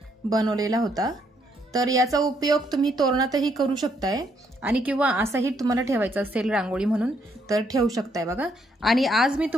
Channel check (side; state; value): both; normal; correlation 0.72